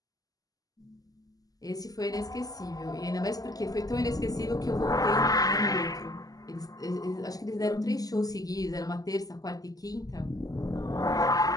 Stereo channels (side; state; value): right; late; 0.18 ms